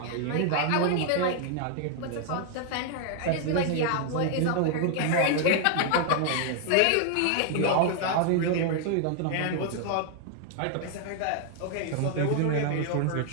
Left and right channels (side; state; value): both; different; correlation 0.00